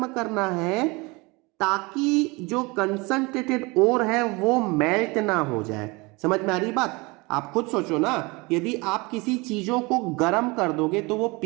करना है ताकि जो कंसंट्रेटेड ओर है वो मेल्ट ना हो जाए। समझ में आ रही बात? आप खुद सोचो ना, यदि आप किसी चीजों को गर्म कर दोगे तो वो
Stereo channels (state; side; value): quieter; left; 25.7 dB